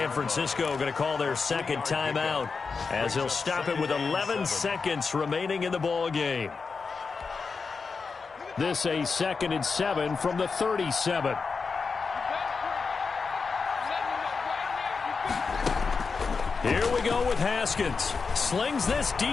Francisco going to call their 2nd timeout as he'll stop it with 11 seconds remaining in the ball game. This a 2nd and 7 from the 37. Here we go with Haskins. Slings this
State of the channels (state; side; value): quieter; right; 4.9 dB